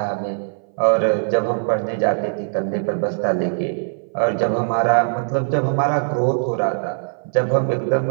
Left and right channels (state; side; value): silent; left; 61 dB below the other